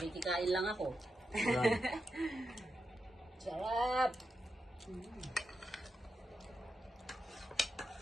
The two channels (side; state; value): both; normal; correlation 0.87